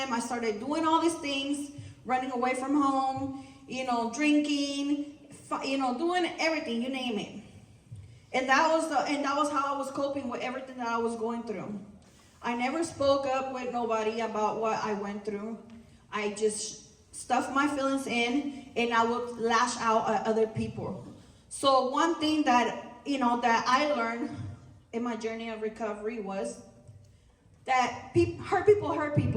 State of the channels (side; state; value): both; identical; correlation 1.00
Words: I started doing all these things. Running away from home, you know, drinking, you know, doing everything, you name it. And that was how I was coping with everything that I was going through. I never spoke up with nobody about what I went through. I just stuffed my feelings in, and I would lash out at other people. So one thing that, you know, that I learned in my journey of recovery was that hurt